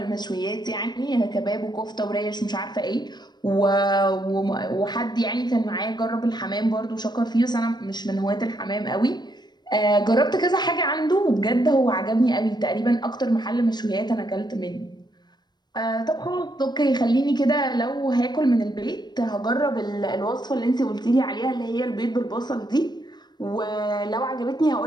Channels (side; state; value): right; late; 0.21 ms